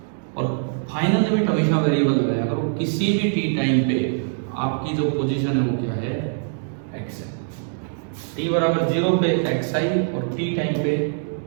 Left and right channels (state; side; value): silent; left; digital silence